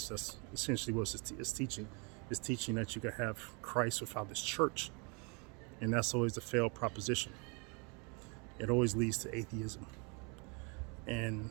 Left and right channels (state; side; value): quieter; left; 33.1 dB